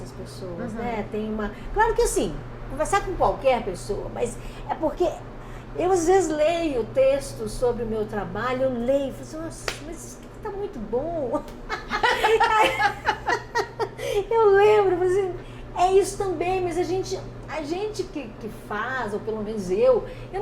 pessoas, né? Claro que assim, conversar com qualquer pessoa, mas é porque eu às vezes leio textos sobre o meu trabalho, eu leio e falo assim, nossa, mas isso aqui tá muito bom. Eu lembro, assim, é isso também, mas a gente que faz, ou pelo menos eu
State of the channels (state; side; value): identical; both; correlation 1.00